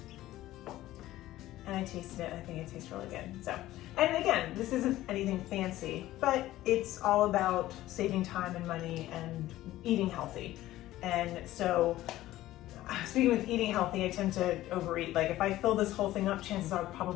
and I tasted it. I think it tastes really good. So, and again, this isn't anything fancy, but it's all about saving time and money and eating healthy. And so, speaking with eating healthy, I tend to overeat. Like if I fill this whole thing up, chances are I'll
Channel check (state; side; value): quieter; right; 15.3 dB